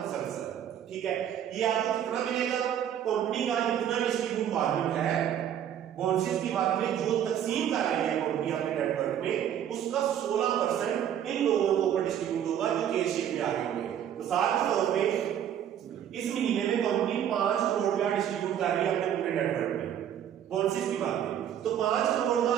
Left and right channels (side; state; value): left; quieter; 9.9 dB